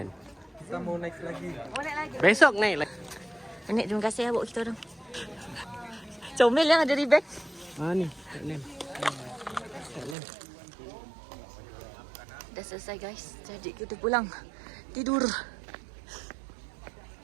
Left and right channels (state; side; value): drops out; left; at 10.2 s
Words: kita mau naik lagi. Oh, naik lagi. Besok naik lagi. Nek, terima kasih ya buat kita orang. Comel yang ada di beg. Ni. Tak lem. Dah selesai guys. Jadi kita pulang. Tidur.